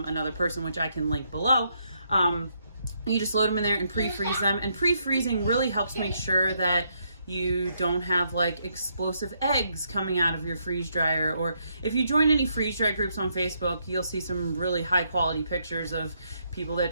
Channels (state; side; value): inverted; both; correlation -0.75